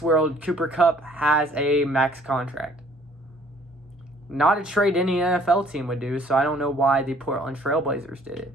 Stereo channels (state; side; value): normal; both; correlation 0.58